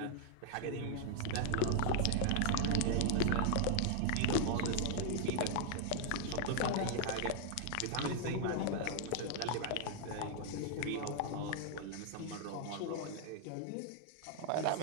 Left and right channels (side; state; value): both; different; correlation 0.00